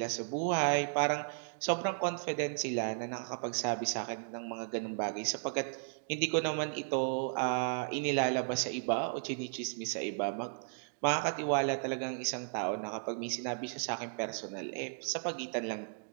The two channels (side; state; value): left; silent; digital silence